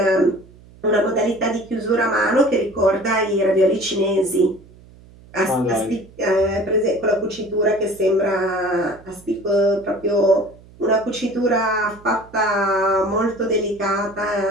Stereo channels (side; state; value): right; noise; hum, 24 dB below the sound